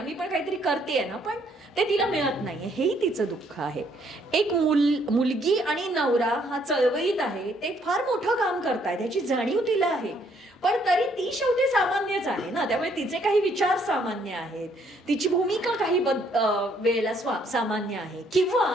मी पण काहीतरी करते ना, पण ते तिला मिळत नाहीये, हेही तिचं दुःख आहे. एक मुलगी आणि नवरा हा चळवळीत आहे, ते फार मोठं काम करतायत, त्याची जाणीव तिला आहे, पण तरी ती शेवटी सामान्यच आहे ना. त्यामुळे तिचे काही विचार सामान्य आहेत, तिची भूमिका काही वेळेला सामान्य आहे, किंवा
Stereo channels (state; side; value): normal; both; correlation 0.67